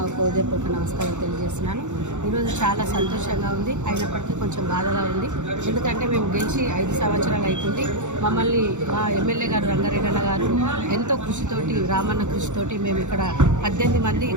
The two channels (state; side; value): late; left; 0.84 ms